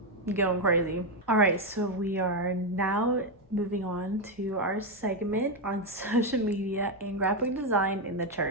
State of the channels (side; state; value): both; normal; correlation 0.05